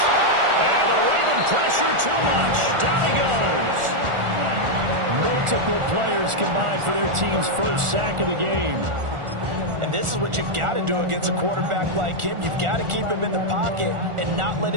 And the Raven pressure too much. Down he goes. Multiple players combined for their team's first sack of the game. And this is what you've got to do against a quarterback like him. You've got to keep him in the pocket and not let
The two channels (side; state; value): left; late; 1.4 ms